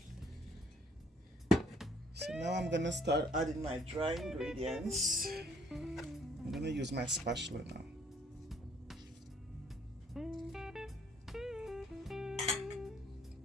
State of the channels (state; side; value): normal; both; correlation 0.63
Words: So now I'm gonna start adding my dry ingredients. I'm gonna use my spatula now.